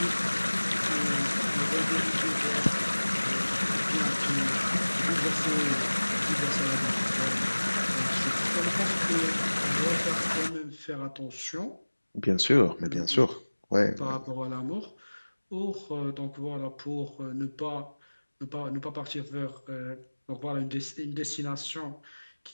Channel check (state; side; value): inverted; both; correlation -1.00